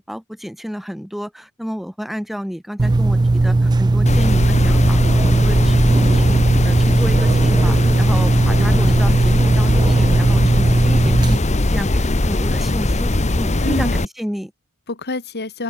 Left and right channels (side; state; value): both; normal; correlation 0.90